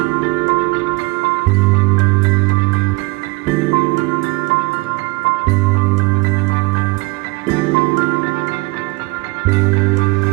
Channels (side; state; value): left; quieter; 25.2 dB